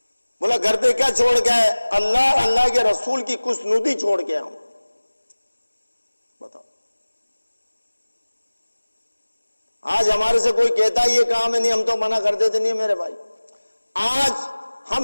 بولا گھر پہ کیا چھوڑ کے آئے؟ اللہ کے رسول کی خوشنودی چھوڑ کے آؤں۔ بتاؤ، آج ہمارے سے کوئی کہتا ہے یہ کام ہے، نہیں ہم تو منع کر دیتے، نہیں میرے بھائی۔ آج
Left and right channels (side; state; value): both; inverted; correlation -1.00